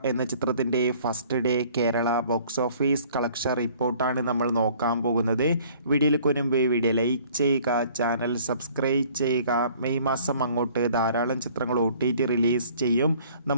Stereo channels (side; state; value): both; inverted; correlation -0.55